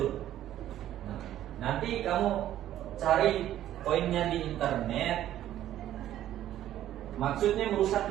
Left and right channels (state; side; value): quieter; left; 12.4 dB